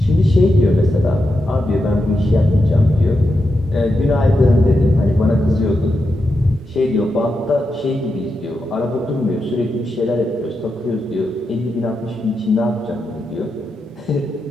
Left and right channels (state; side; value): normal; both; correlation 0.87